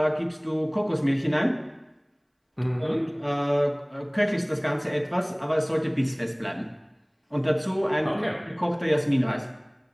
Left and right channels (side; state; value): both; identical; correlation 1.00